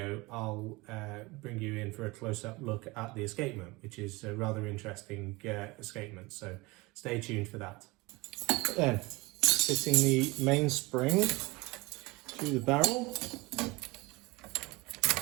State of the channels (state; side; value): quieter; left; 23.4 dB